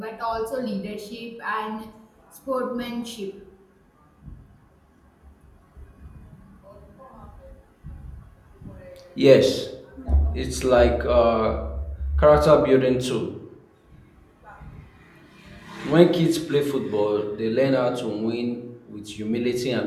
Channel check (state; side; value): identical; both; correlation 1.00